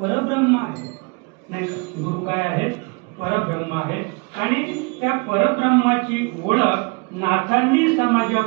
आहे. नाही का? गुरु काय आहे? परब्रह्म आहे. आणि त्या परब्रह्माची ओळख नाथांनी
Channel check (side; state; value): left; quieter; 31.2 dB